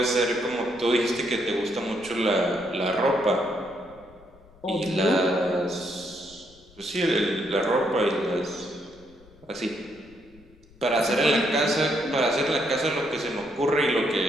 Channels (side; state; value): left; noise; rumble, 26 dB below the sound